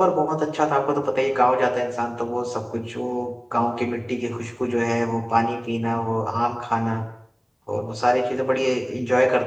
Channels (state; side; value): identical; both; correlation 1.00